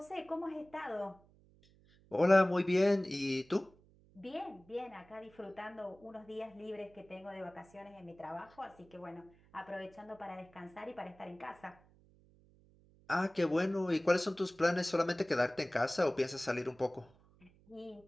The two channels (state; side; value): noise; right; hum, 28 dB below the sound